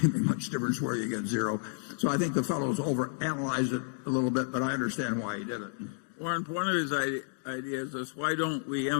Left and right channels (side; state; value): right; silent; digital silence